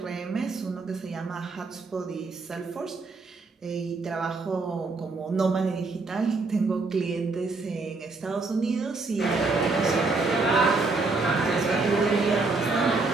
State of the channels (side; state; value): left; quieter; 3.7 dB